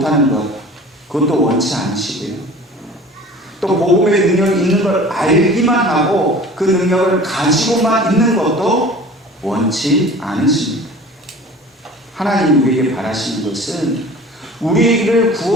것, 그것도 원치 않으시고요. 또 복음의 능력이 있는 걸 알기만 하고 그 능력을 가지고만 있는 것도 원치 않으십니다. 하나님 우리에게 바라시는 것은 우리를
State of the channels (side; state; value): both; normal; correlation 0.43